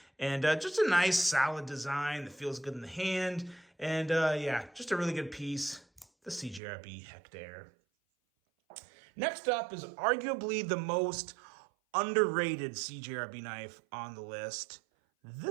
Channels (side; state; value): left; drops out; at 6.6 s